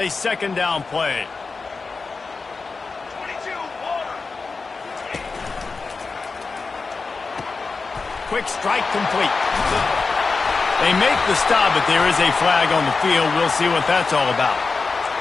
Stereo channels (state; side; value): quieter; right; 4.3 dB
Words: 2nd down play. Quick strike complete. They make the stop, but there is a flag on the field. We'll see what that's all about.